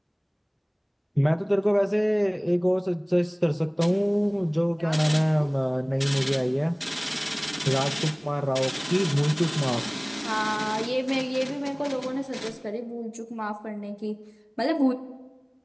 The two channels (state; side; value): identical; both; correlation 1.00